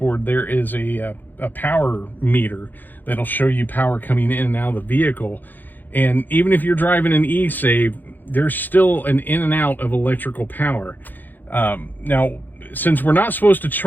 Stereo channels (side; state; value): right; late; 0.087 ms